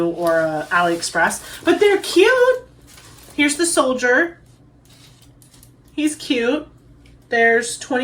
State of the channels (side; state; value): both; identical; correlation 1.00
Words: or a AliExpress, but they're cute. Here's the soldier. He's cute. There's